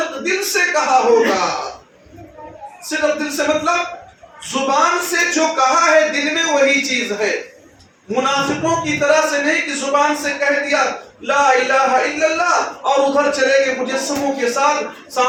دل سے کہا ہوگا. صدق دل سے مطلب زبان سے جو کہا ہے دل میں وہی چیز ہے. منافقوں کی طرح سے نہیں کہ زبان سے کہہ دیا لا الہ الا اللہ اور ادھر چلے گئے مجسموں کے ساتھ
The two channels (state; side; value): identical; both; correlation 1.00